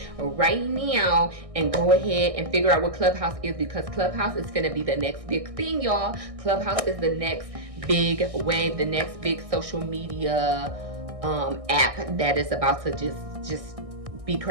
right now and go ahead and figure out what Clubhouse is, because Clubhouse is gonna be the next big thing, y'all. Clubhouse is the next big wave, the next big social media app that is about to just be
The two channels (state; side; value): late; left; 1.6 ms